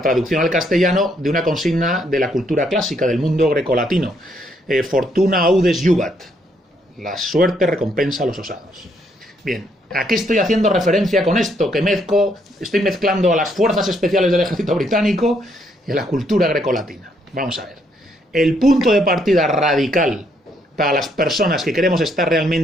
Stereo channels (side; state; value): both; normal; correlation 0.72